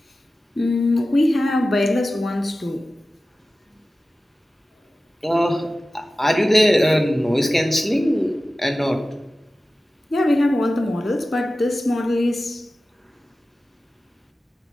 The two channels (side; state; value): both; normal; correlation 0.95